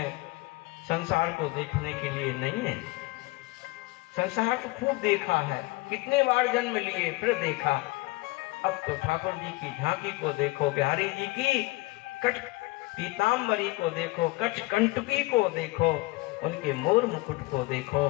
संसार को देखने के लिए नहीं है। संसार को खूब देखा है, कितने बार जन्म लिए फिर देखा। अब तो ठाकुर जी की झांकी को देखो, बिहारी जी की कट पीताम्बरी को देखो, कट कंटकी को देखो, उनके मोर मुकुट को देखो,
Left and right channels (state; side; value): quieter; right; 22.5 dB